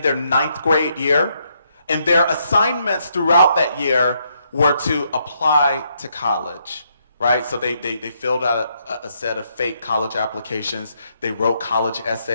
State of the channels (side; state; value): both; inverted; correlation -0.75